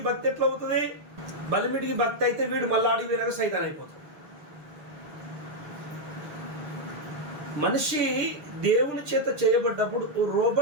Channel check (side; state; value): left; late; 6.7 ms